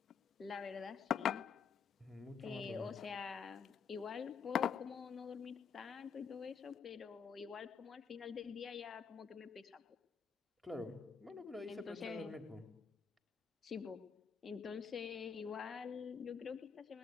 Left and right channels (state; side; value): quieter; right; 6.6 dB